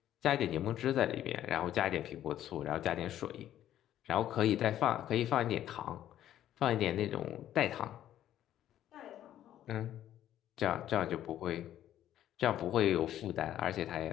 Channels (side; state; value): right; quieter; 11.9 dB